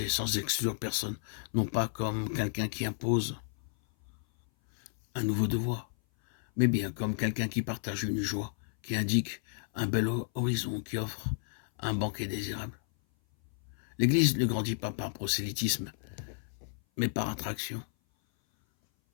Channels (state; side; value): silent; right; 56 dB below the other